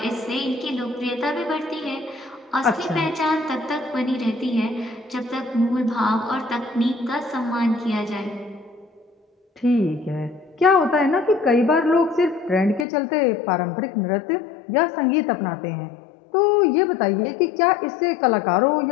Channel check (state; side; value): drops out; right; at 12.9 s